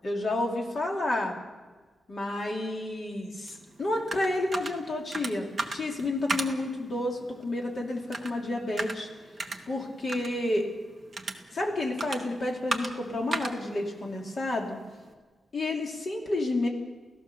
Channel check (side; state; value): both; normal; correlation 0.86